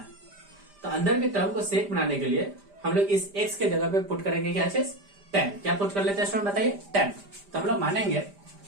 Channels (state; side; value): late; left; 5.0 ms